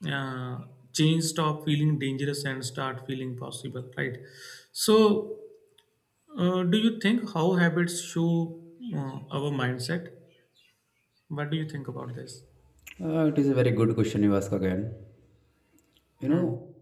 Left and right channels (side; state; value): both; identical; correlation 1.00